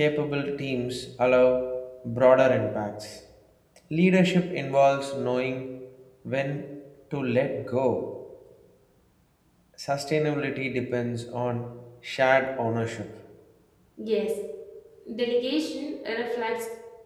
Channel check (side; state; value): both; identical; correlation 1.00